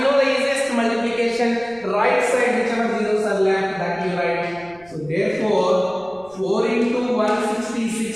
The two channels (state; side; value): noise; right; rumble, 27 dB below the sound